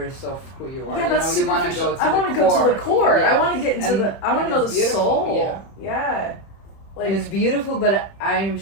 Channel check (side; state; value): right; late; 31 ms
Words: of who you are. Yeah, you that's know, you want to superficial. go to I the want to core. go to the core. Yeah. I want to get into And- I want and to know it's the beautiful, soul. Yeah. Like, and it's beautiful, but I'm